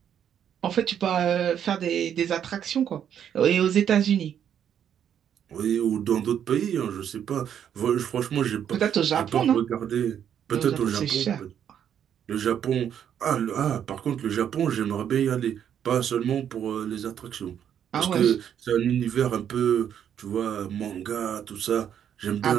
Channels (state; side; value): quieter; left; 9.1 dB